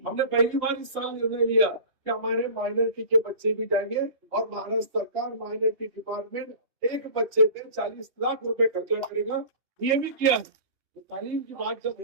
पहली बार इस साल निर्णय लिया कि हमारे माइनॉरिटी के बच्चे भी जाएंगे और महाराष्ट्र सरकार माइनॉरिटी डिपार्टमेंट एक बच्चे पे 40 लाख रुपए खर्चा करेगा। ये भी किया। तो तालीम की बात जब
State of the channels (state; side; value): late; left; 2.8 ms